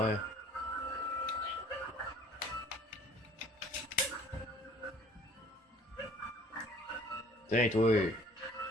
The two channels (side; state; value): both; normal; correlation 0.53